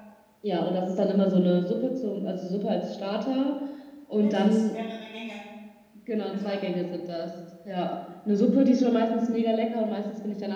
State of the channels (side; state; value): both; identical; correlation 1.00